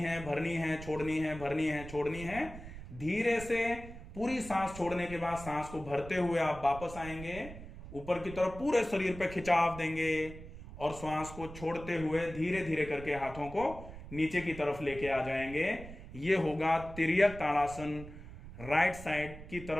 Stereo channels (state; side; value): noise; right; rumble, 13 dB below the sound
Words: भरनी है, छोड़नी है, भरनी है, छोड़नी है। धीरे से पूरी सांस छोड़ने के बाद सांस को भरते हुए आप वापस आएंगे, ऊपर की तरफ पूरे शरीर पे खिंचाव देंगे और श्वास को छोड़ते हुए धीरे धीरे करके हाथों को नीचे की तरफ लेके आ जाएंगे। ये होगा तिर्यक ताड़ासन, राइट साइड की